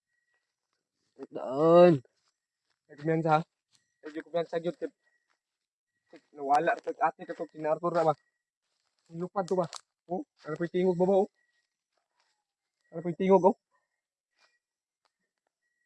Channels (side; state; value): both; identical; correlation 1.00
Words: Doon. Ay kumyansa ha? Ay kumyansa yun. Nawala sa ate ka to, sinartor na ba? Lupad to ba? Oh, ano po yung tingog ba ba oh? Ano po yung tingog oh?